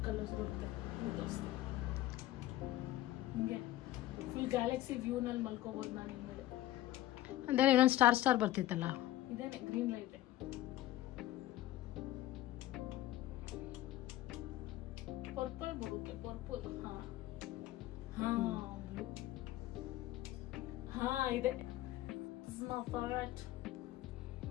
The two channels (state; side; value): quieter; right; 15.1 dB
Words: ಕಲರ್ಸ್ ಬರುತ್ತೆ. ಹಿಂಗೆ ಫುಲ್ ಗ್ಯಾಲಕ್ಸಿ ವ್ಯೂನಲ್ಲಿ ಮಲ್ಕೋಬಹುದು ನಾನು ಹಿಂದೆ. ಅಂದ್ರೆ ಇನ್ನೊಂದು ಸ್ಟಾರ್ ಬರ್ತಿತ್ತಲ್ಲ, ಇದೇನೆ ಗ್ರೀನ್ ಲೈಟ್. ಪರ್ಪಲ್ ಬರುತ್ತೆ, ಪರ್ಪಲ್. ಹಾ ಇದೆ.